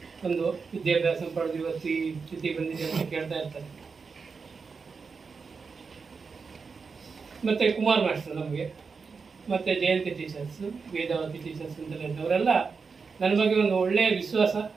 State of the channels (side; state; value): left; quieter; 5.1 dB